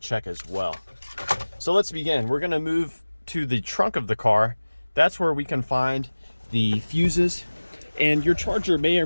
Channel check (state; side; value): inverted; both; correlation -1.00